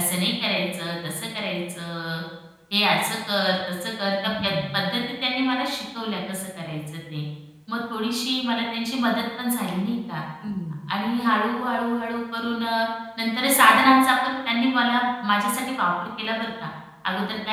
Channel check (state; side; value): identical; both; correlation 1.00